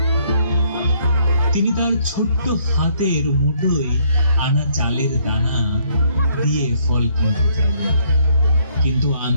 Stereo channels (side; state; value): both; inverted; correlation -0.67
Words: তিনি তার ছোট্ট হাতের মুঠোয় আনা চালের দানা দিয়ে ফল কিনতে চাইলেন, কিন্তু